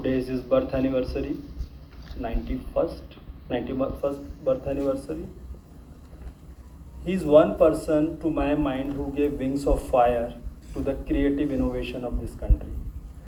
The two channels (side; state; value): both; identical; correlation 1.00